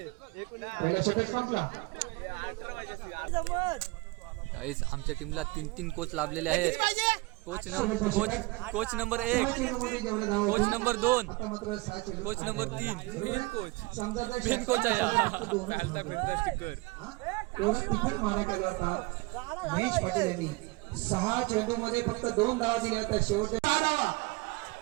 पहिला षटक संपला. गाईस आमच्या टीमला 3 कोच लाभलेले आहेत. Coach number 1, coach number 2, coach number 3, main coach आहे एवढा तिखट मारा केला होता महेश पाटील यांनी. 6 चेंडू मध्ये फक्त 2 धावा दिल्या होत्या. शेवटच्या 6 धावा.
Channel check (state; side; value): quieter; left; 23.9 dB